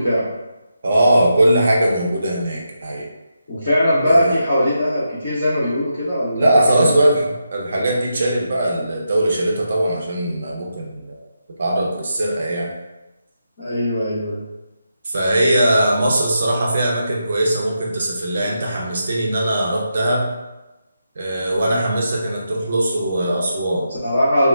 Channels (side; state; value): both; inverted; correlation -0.85